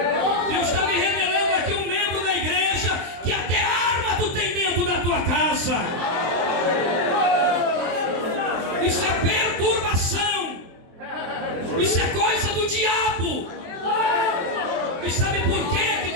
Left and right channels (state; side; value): late; left; 23 ms